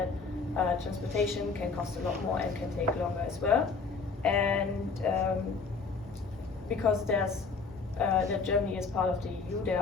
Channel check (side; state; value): right; quieter; 4.6 dB